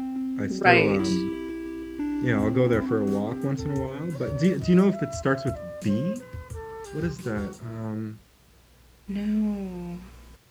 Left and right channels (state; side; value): identical; both; correlation 1.00